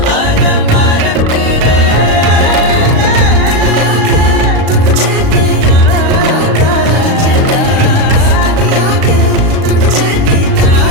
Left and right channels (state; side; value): late; left; 36 ms